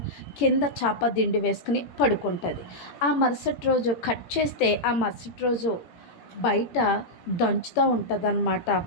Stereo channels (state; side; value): late; right; 18 ms